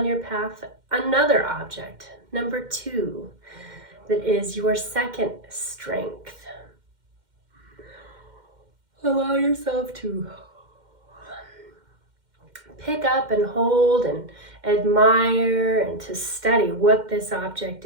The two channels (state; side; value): late; left; 2.1 ms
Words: your path another object, number 2, that is your second strength. Allow yourself to pick up and hold and admire and to study what this object